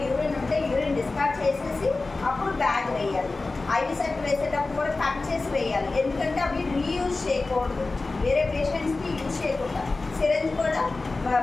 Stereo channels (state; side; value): quieter; right; 3.5 dB